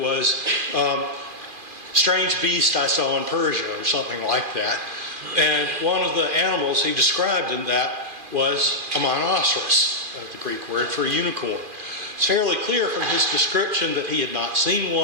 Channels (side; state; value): left; late; 2.4 ms